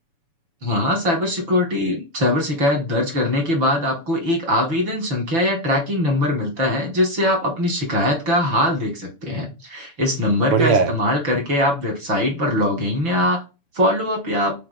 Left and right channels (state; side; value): late; left; 7.0 ms